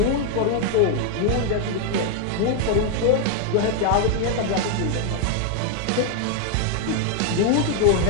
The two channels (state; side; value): different; both; correlation 0.00